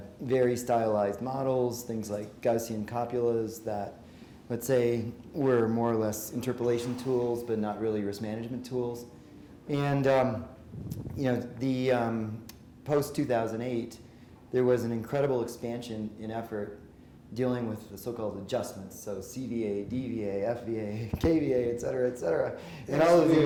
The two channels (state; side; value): identical; both; correlation 1.00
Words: very stylized models, things like Gaussian copulas that, let's say, were more or less interpolation tools, but not really risk management tools. And the post-2008, there was an incredible expansion in effort dealing with the so-called adjustments, so CVA, DVA, FVA, KVA, et cetera, and all of